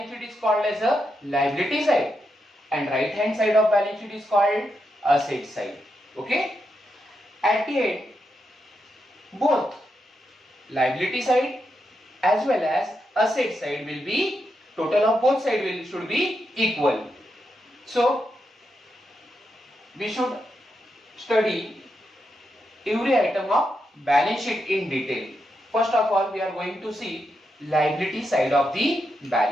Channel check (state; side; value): normal; both; correlation 0.84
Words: sheet is called as a liability side and right hand side of balance sheet is called asset side, okay. At the end, both liability side as well as asset side will be, total of both sides should be equal. So we should study every item of balance sheet in detail. First of all, we are going to see liability side of the